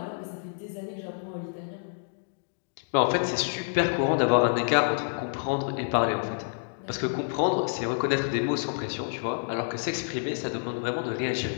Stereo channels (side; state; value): right; silent; digital silence